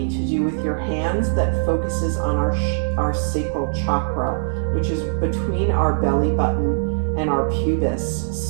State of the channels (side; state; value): left; silent; 65 dB below the other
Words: to do with your hands that focuses on our sacral chakra, which is between our belly button and our pubis.